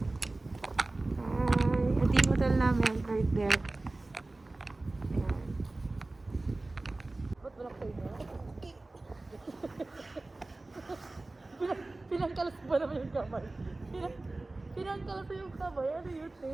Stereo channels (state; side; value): quieter; left; 3.0 dB